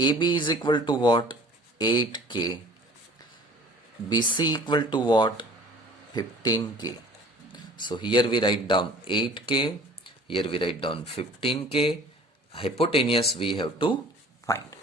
AB is equal to what? 8K. BC equal to what? 15K. So here we write down 8K, here we write down 15K. Hypotenuse we have to find.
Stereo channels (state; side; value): normal; both; correlation 0.48